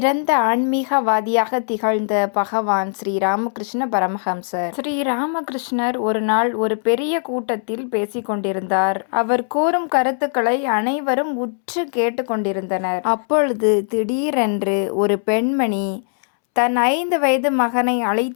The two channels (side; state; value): right; silent; 66 dB below the other